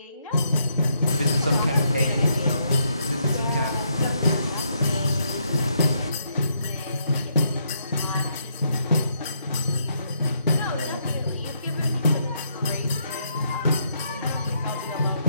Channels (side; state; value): both; inverted; correlation -0.75